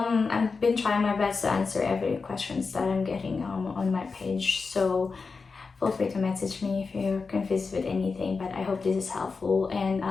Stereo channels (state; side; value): quieter; right; 4.6 dB